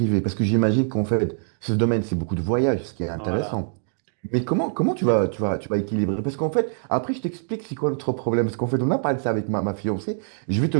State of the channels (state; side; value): silent; left; digital silence